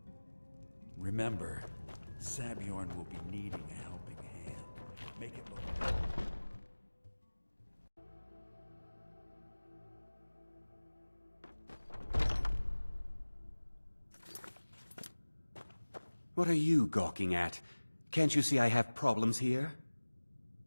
Remember, Sabjorn will be needing a helping hand. Make it look... What are you gawking at? Can't you see I have problems here?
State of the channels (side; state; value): both; inverted; correlation -1.00